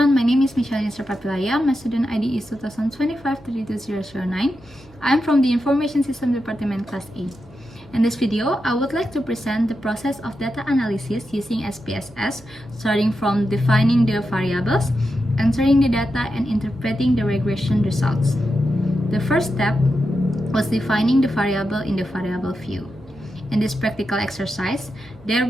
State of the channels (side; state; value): right; noise; hum, 26 dB below the sound